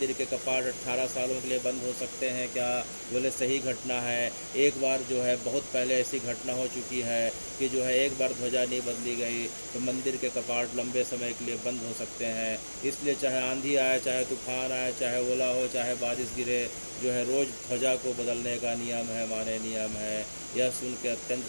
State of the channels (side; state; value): both; inverted; correlation -1.00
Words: के कपाट 18 सालों के लिए बंद हो सकते हैं क्या? बोले सही घटना है। एक बार जो है बहुत पहले ऐसी घटना हो चुकी है कि जो है एक बार ध्वजा नहीं बदली गई तो मंदिर के कपाट लंबे समय के लिए बंद हो सकते हैं। इसलिए चाहे आंधी आए, चाहे तूफान आए, चाहे ओला हो, चाहे बारिश गिरे, जो है रोज़ ध्वजा को बदलने का नियम है, माने नियम है। यह सुन के अत्यंत